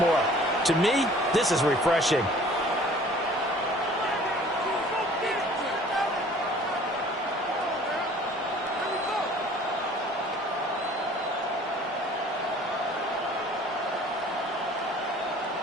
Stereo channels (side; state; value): both; normal; correlation 0.51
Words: To me, this is refreshing.